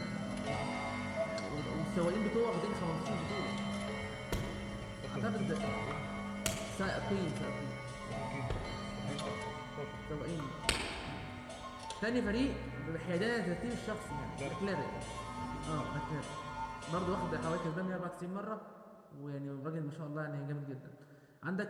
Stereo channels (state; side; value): identical; both; correlation 1.00